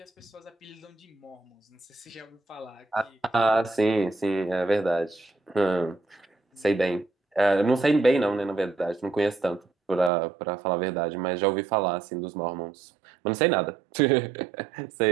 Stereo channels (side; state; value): left; drops out; at 10.1 s